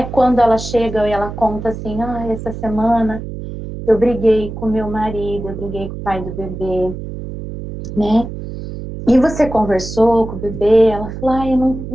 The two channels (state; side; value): noise; right; hum, 9 dB below the sound